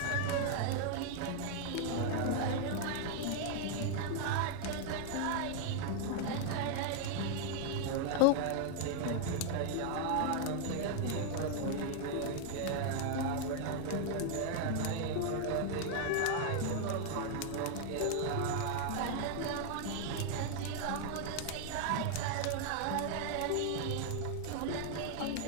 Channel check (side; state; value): both; different; correlation 0.00